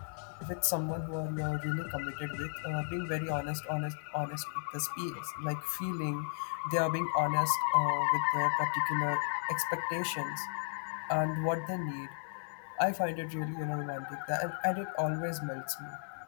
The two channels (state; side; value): silent; right; digital silence